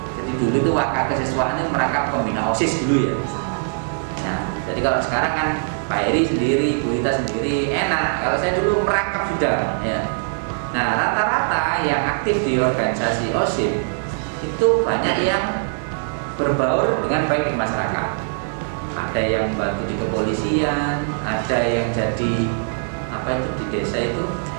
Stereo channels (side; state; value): left; silent; digital silence